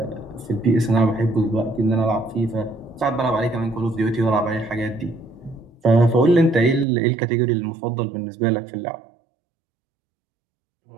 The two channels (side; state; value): left; drops out; at 6.9 s